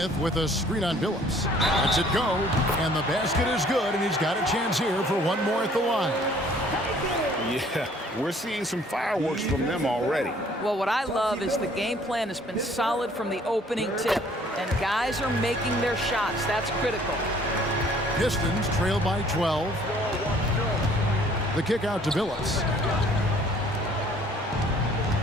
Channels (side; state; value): both; normal; correlation 0.57